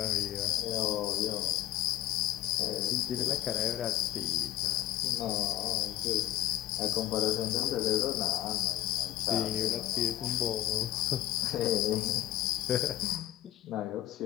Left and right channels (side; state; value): right; quieter; 13.9 dB